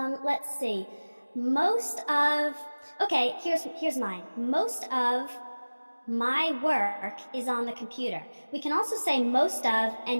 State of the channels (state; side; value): inverted; both; correlation -1.00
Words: see. Okay, here's mine. Most of my work is on the computer. We can also say most of